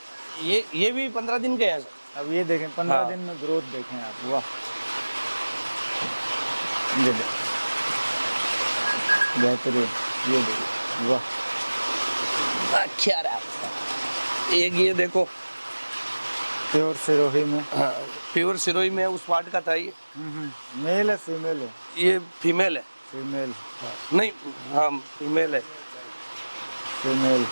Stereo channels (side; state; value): both; inverted; correlation -1.00